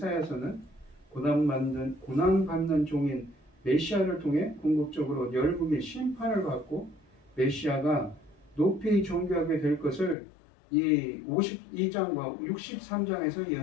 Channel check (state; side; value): drops out; right; at 10.2 s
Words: 고난받는 종인 메시아를 통해 궁극적으로 열국이 심판을 받고 메시아가 높이 존귀하게 될 것을 이 52장과 63장에서